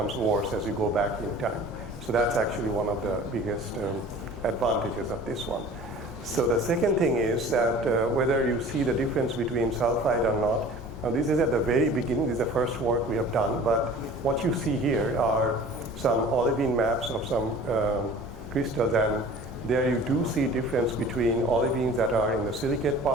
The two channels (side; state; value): both; normal; correlation 0.44